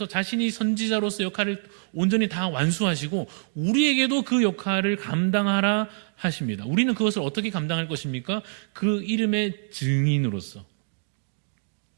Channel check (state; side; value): silent; left; digital silence